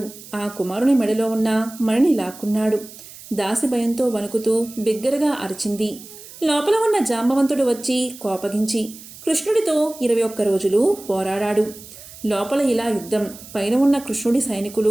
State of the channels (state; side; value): noise; right; hiss, 17 dB below the sound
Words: ఆ కుమారుని మెడలో ఉన్న మణిని లాక్కున్నాడు. దాసి భయంతో వణుకుతూ బిగ్గరగా అరిచింది. లోపల ఉన్న జాంబవంతుడు వచ్చి కోపగించి కృష్ణుడితో 21 రోజులు పోరాడాడు. లోపల ఇలా యుద్ధం. పైన ఉన్న కృష్ణుడి